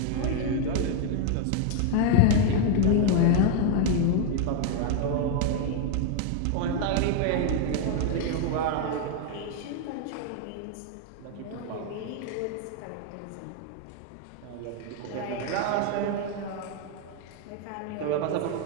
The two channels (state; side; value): different; both; correlation 0.00